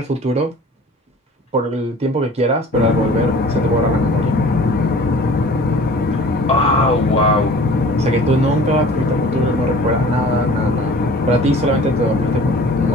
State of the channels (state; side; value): normal; both; correlation 0.46